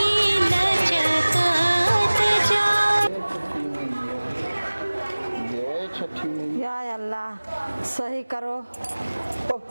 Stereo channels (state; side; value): inverted; both; correlation -1.00